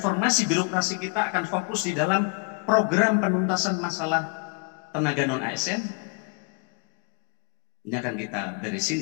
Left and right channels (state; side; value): quieter; right; 32.8 dB